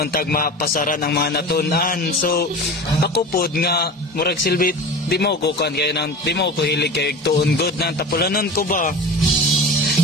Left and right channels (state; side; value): normal; both; correlation 0.33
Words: tag mapasaran ang mga natunan. So ako pod nga murag silbi di mo ko kan kay nang di mo ko hilig kay tuon good nang tapulanon ko ba.